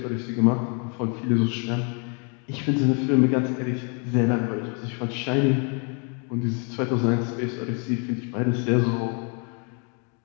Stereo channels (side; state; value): right; quieter; 37.3 dB